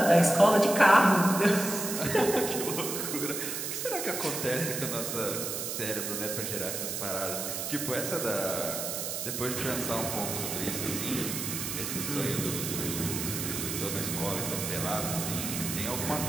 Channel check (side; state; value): right; noise; hiss, 4 dB below the sound